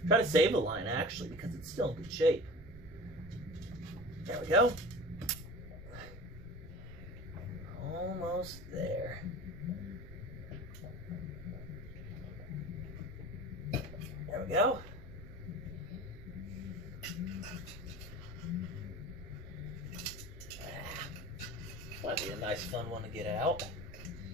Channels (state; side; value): noise; right; rumble, 15 dB below the sound